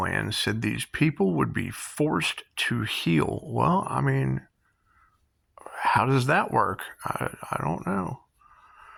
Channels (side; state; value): both; identical; correlation 1.00